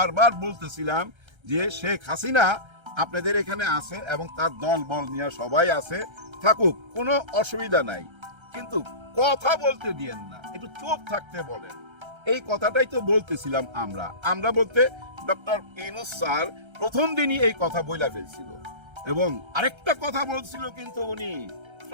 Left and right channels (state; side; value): late; left; 1.3 ms